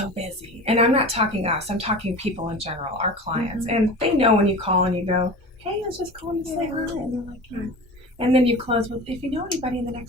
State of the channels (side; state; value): both; normal; correlation 0.34